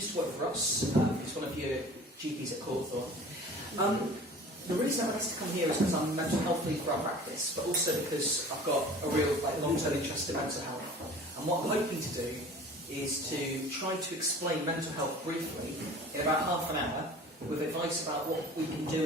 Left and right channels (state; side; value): normal; both; correlation 0.43